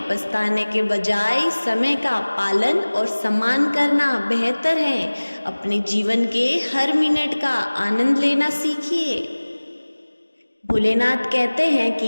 पछताने के बजाय समय का पालन और सम्मान करना बेहतर है। अपने जीवन के हर मिनट का आनंद लेना सीखिए। भोलेनाथ कहते हैं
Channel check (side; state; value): both; inverted; correlation -1.00